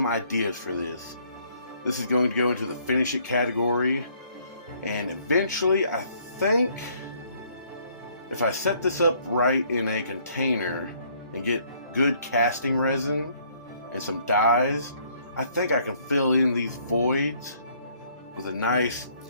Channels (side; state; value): both; inverted; correlation -0.64